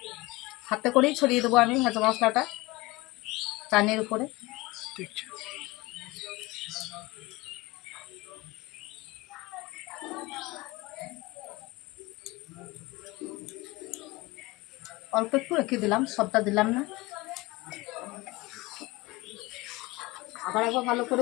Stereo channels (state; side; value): quieter; right; 21.5 dB